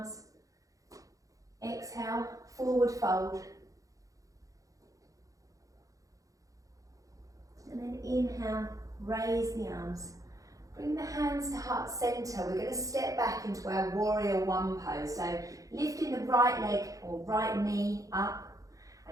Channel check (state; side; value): late; left; 0.17 ms